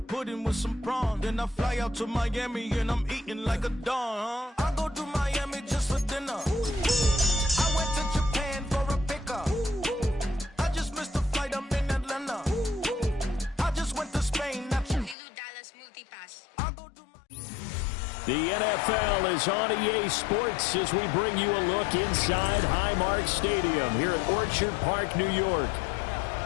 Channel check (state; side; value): drops out; right; at 15.2 s